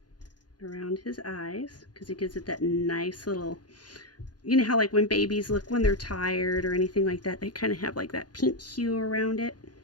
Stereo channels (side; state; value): right; late; 0.69 ms